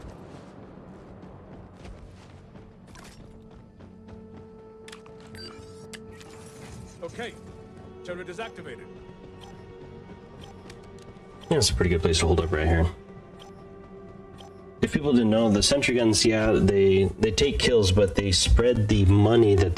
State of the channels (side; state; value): both; identical; correlation 1.00